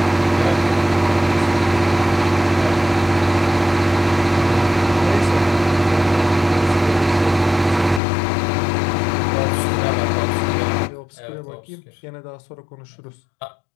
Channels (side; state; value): right; drops out; at 8.0 s